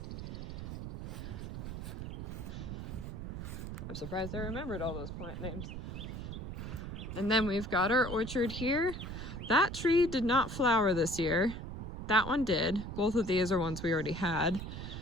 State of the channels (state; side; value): noise; right; rumble, 7 dB below the sound